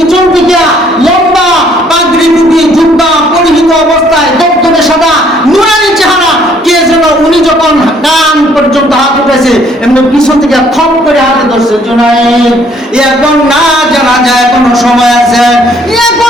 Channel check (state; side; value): normal; both; correlation 0.63